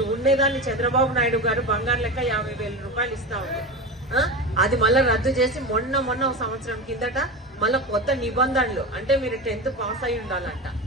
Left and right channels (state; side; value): normal; both; correlation 0.24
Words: ఉండేదాన్ని చంద్రబాబు నాయుడు గారు బంగారు లెక్క 50,000 రూపాయలు ఇస్తా ఉంది. అది మళ్ళీ రద్దు చేసి మొన్న ఒక సంవత్సరం కిందట మళ్ళీ కొత్త నిబంధనలు, అంటే మీరు 10th పాస్ అయి ఉండాలంట.